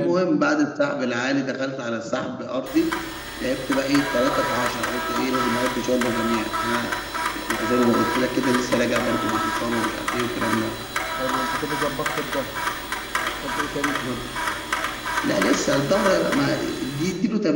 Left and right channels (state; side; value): identical; both; correlation 1.00